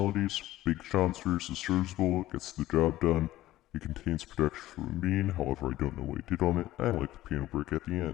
Big Sean's verse is serviceable, gets the job done. It contains production from Aminé, however I don't know what he did on it. I like the piano break at the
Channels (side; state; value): right; quieter; 15.4 dB